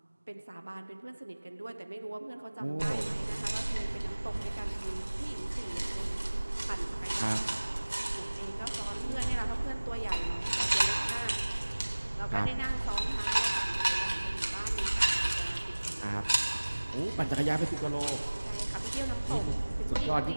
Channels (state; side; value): inverted; both; correlation -1.00